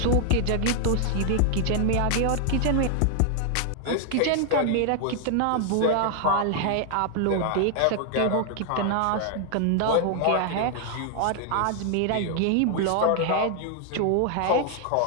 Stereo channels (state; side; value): different; both; correlation 0.00